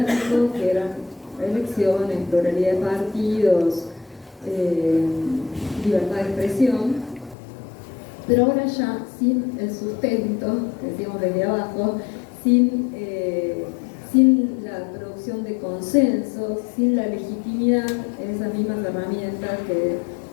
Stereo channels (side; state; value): right; drops out; at 7.4 s